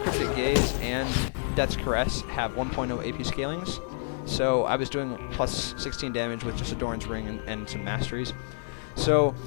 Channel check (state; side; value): silent; right; 58 dB below the other